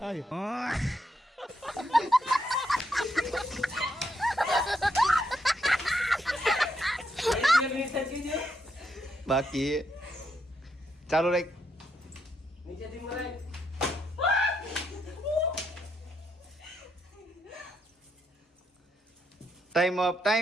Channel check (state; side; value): normal; both; correlation 0.79